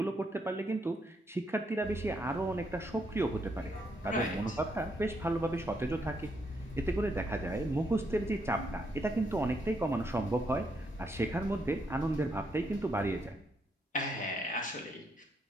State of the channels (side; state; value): both; normal; correlation 0.76